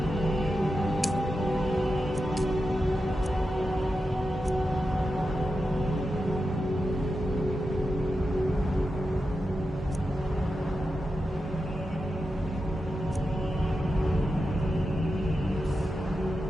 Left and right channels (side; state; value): both; normal; correlation 0.90